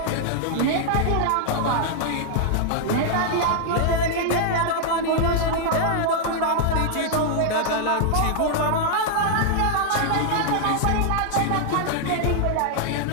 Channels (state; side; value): different; both; correlation -0.01